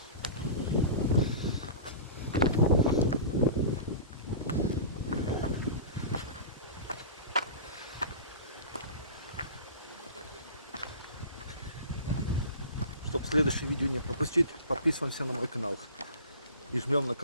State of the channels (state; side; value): inverted; both; correlation -0.36